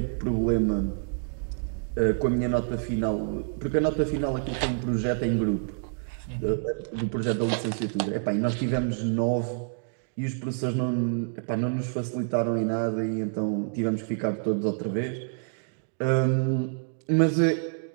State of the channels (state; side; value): silent; left; digital silence